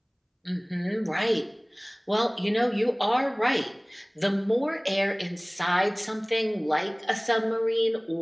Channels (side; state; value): both; identical; correlation 1.00